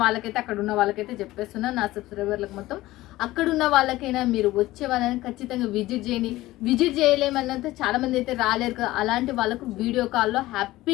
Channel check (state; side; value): quieter; right; 17.3 dB